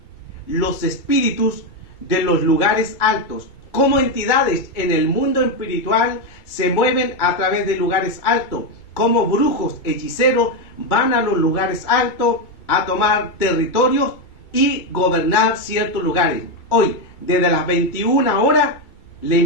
los espíritus de los lugares altos. Cómo entidades en el mundo espiritual se mueven a través de lugares altos. Cómo brujos, hechiceros van a los lugares altos a tomar territorios y gobernar ciertos lugares. Hoy, desde las 21 horas, le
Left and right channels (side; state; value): right; late; 2.3 ms